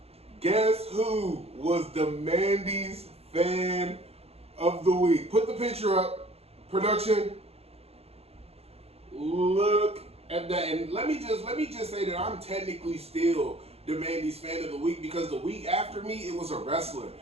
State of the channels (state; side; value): late; left; 0.29 ms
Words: Guess who was the Mandy's fan of the week? Put the picture up. Production. Look at that. And let me just say that I'm technically still the Mandy's fan of the week because the week after me it was a wrestler.